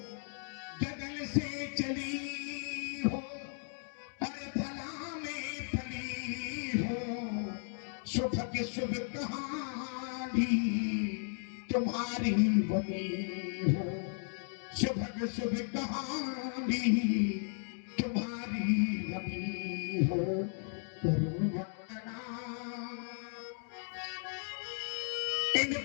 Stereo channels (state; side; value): silent; right; 54 dB below the other